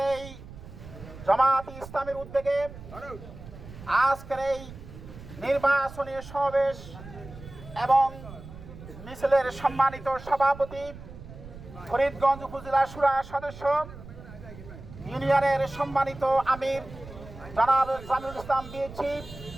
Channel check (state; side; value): noise; right; rumble, 15 dB below the sound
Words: এই জামাত ইসলামের উদ্যোগে আজকের এই নির্বাচনী সমাবেশ এবং মিছিলের সম্মানিত সভাপতি, ফরিদগঞ্জ উপজেলা শুরা সদস্য, ইউনিয়নের সম্মানিত আমির জনাব জামিউল ইসলাম বিএচি,